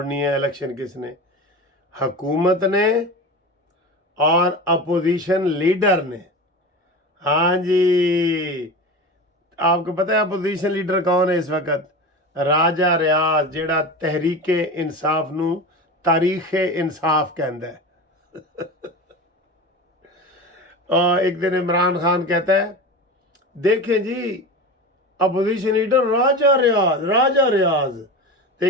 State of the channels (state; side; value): normal; both; correlation 0.29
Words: ہے, الیکشن کس نے, حکومت نے اور اپوزیشن لیڈر نے. ہاں جی, آپ کو پتہ ہے اپوزیشن لیڈر کون ہے اس وقت؟ راجہ ریاض, جیڑا تحریک انصاف نو تاریخ انصاف کہندا ہے. اور ایک دن عمران خان کہتا ہے دیکھیں جی اپوزیشن لیڈر راجہ ریاض. تو